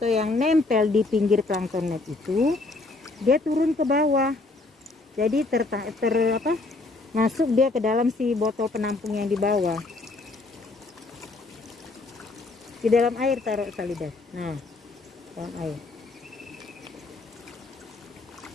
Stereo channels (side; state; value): right; quieter; 3.3 dB